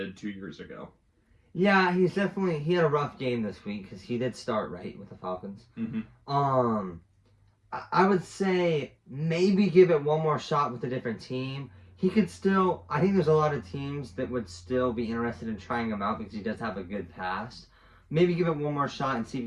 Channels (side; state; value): both; identical; correlation 1.00